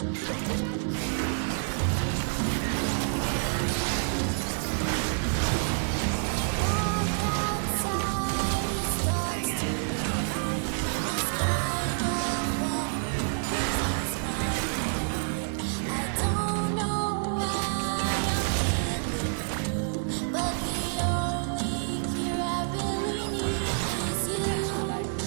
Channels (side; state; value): left; silent; 59 dB below the other